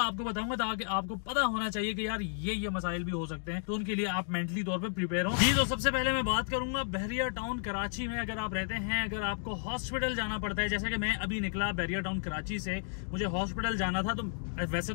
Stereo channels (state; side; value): silent; right; digital silence